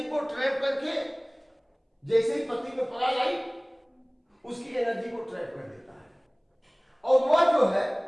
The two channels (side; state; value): both; identical; correlation 1.00